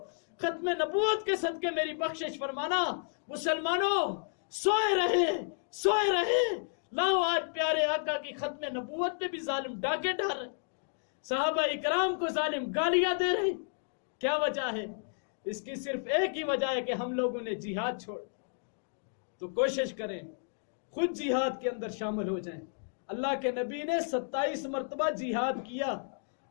نبوت کے صدقے میری بخشش فرمانا۔ مسلمانوں، سوئے رہے لاؤ، آج پیارے آقا کی ختم نبوت پہ بھی ظالم ڈاکے ڈال رہے، صحابہ اکرام کو ظالم گالیاں دے رہے۔ کیا وجہ ہے؟ اس کی صرف ایک ہی وجہ ہے کہ ہم لوگوں نے جہاد چھوڑ۔ تو کوشش کریں خود جہاد کے اندر شامل ہو جائیں۔ اللہ کے نبی نے 27 مرتبہ جہاد کیا۔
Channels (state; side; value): silent; right; digital silence